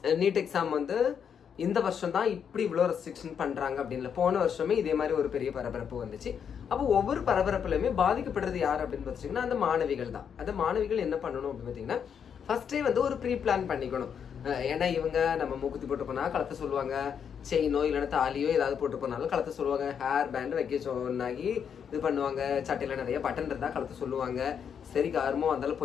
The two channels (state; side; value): quieter; right; 7.6 dB